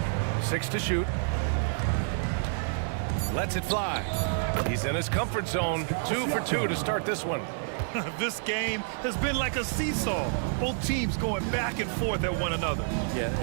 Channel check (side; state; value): left; silent; digital silence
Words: 6 to shoot. Lets it fly. He's in his comfort zone. 2 for 2 to start this one. This game has been like a seesaw. Both teams going back and forth at one another. Yeah,